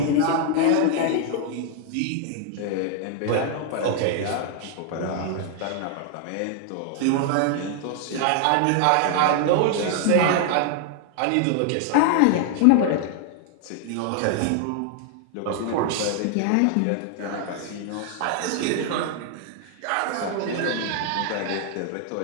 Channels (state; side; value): different; both; correlation 0.00